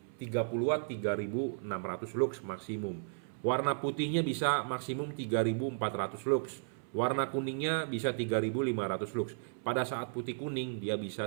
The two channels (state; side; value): silent; left; 55 dB below the other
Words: 30 watt 3600 lux maksimum. Warna putihnya bisa maksimum 3400 lux. Warna kuningnya bisa 3500 lux. Pada saat putih kuning dia